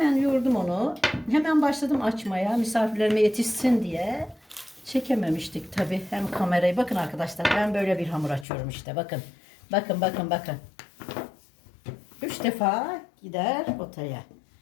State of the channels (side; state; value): right; drops out; at 8.5 s